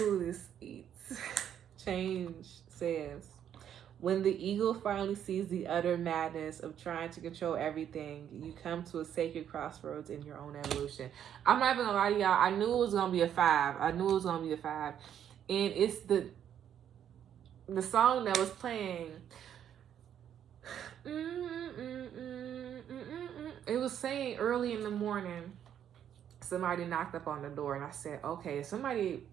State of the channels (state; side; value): quieter; left; 9.6 dB